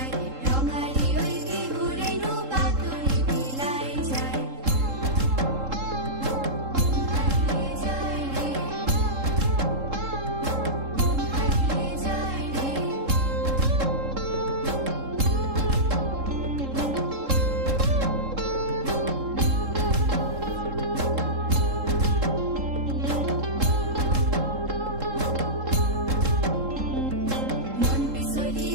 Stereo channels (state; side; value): late; left; 3.7 ms